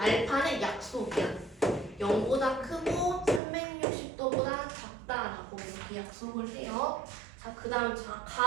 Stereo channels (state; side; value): drops out; left; at 3.4 s